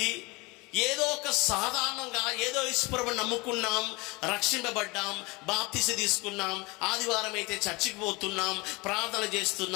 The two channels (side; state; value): right; quieter; 25.2 dB